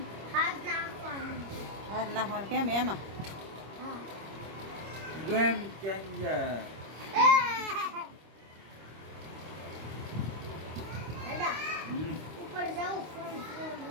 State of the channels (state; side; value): late; left; 25 ms